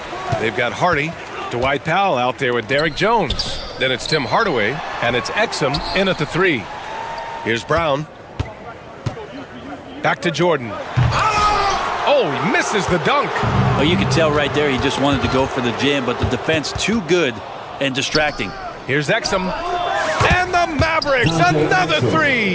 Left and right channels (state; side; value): identical; both; correlation 1.00